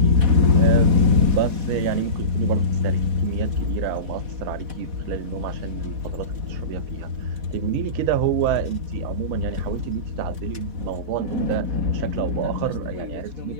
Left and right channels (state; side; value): late; left; 4.1 ms